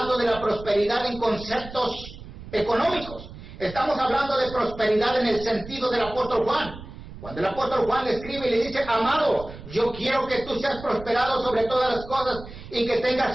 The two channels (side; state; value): right; noise; rumble, 14 dB below the sound